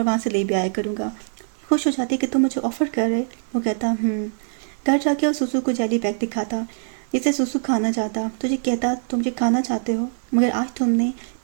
वहाँ से ले भी आया करूँगा। खुश हो जाती कि तुम मुझे ऑफ़र कर रहे। वो कहता घर जाके वो सुसु को जेली बैग दिखाता, जिसे सुसु खाना चाहता। तो ये कहता तुम ये खाना चाहते हो, मगर आज तुमने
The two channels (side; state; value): left; silent; digital silence